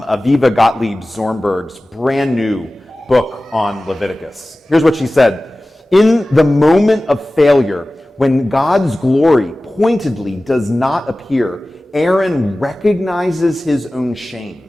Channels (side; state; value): both; normal; correlation 0.97